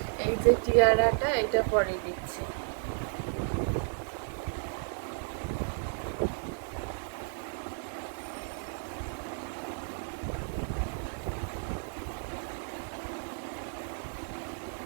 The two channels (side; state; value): left; silent; 56 dB below the other